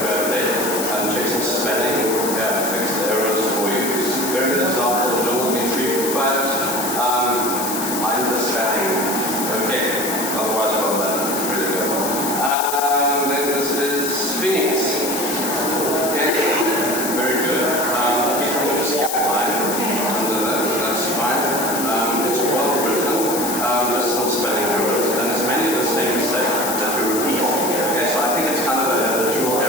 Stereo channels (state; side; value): noise; left; hiss, 4 dB below the sound